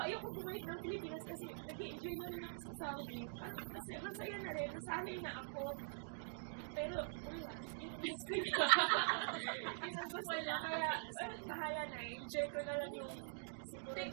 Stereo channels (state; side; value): silent; left; digital silence